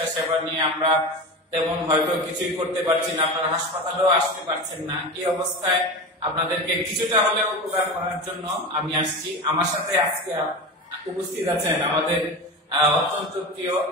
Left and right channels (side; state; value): both; normal; correlation 0.26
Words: সেবা নিয়ে আমরা তেমন হয়তো কিছুই করতে পারছি না, আপনারা হাসপাতালেও আসতে পারছেন না। এই অবস্থায় আপনাদেরকে কিছুটা হলেও উপকার করার জন্য আমি আসছি। আমার সাথে আজকে উপস্থিত আছেন আমাদের অত্যন্ত প্রিয়,